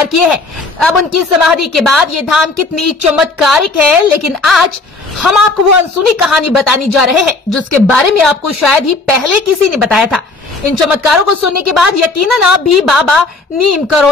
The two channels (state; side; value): quieter; right; 3.5 dB